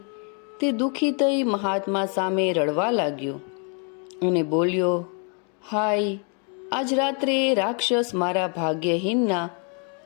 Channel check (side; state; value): right; quieter; 39.3 dB